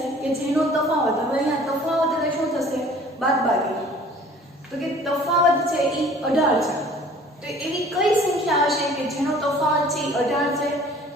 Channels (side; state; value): both; normal; correlation 0.50